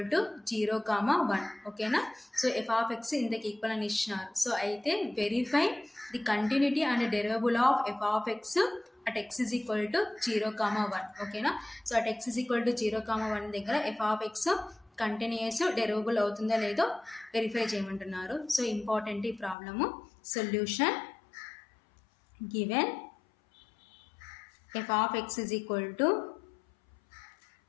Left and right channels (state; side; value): drops out; right; at 19.6 s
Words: to 0, 1. Okay na? So f of x in the equal and ishnar. So aithe verify the continuity and derivable of f of x at x is equal to 0, 1. Okay na? So at x is equal to 0, 1 దగ్గర f of x continuous derivable అవుతుందో లేదో వెరిఫై చేయమంటున్నారు. సో ఇంపార్టెంట్ ఈ problem. Solution given f of x is equal to